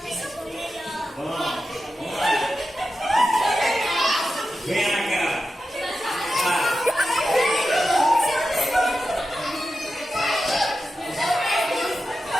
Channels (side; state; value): both; normal; correlation 0.91